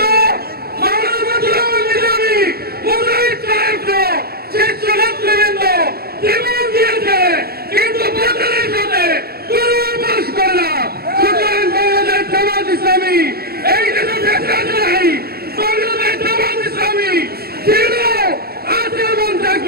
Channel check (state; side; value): late; left; 0.45 ms